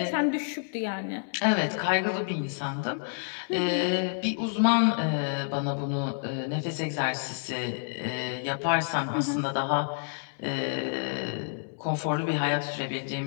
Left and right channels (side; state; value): right; silent; digital silence